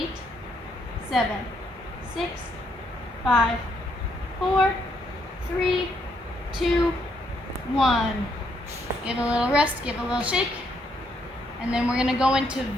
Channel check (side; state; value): both; normal; correlation 0.74